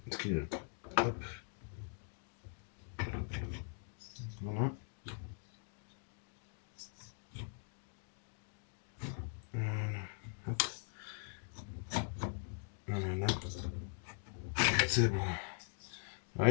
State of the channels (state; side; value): silent; right; 50 dB below the other